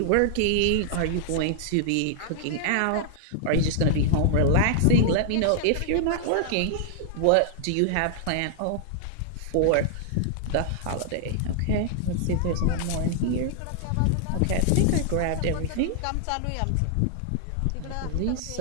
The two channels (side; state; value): both; different; correlation 0.00